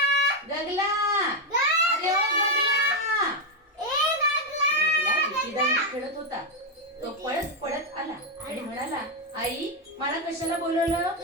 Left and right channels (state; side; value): normal; both; correlation 0.04